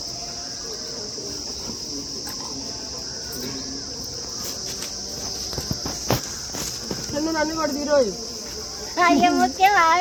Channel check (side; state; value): both; identical; correlation 1.00